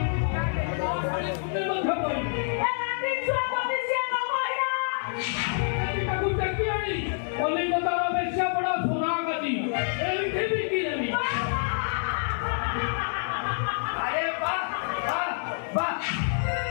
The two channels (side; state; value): right; silent; digital silence